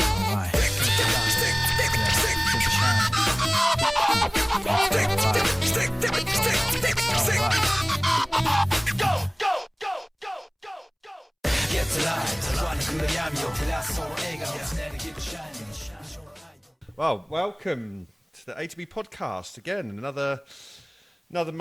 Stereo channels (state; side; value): identical; both; correlation 1.00